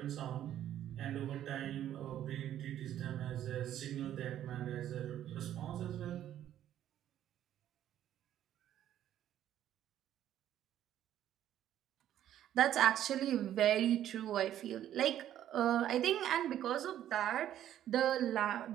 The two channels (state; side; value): quieter; left; 11.5 dB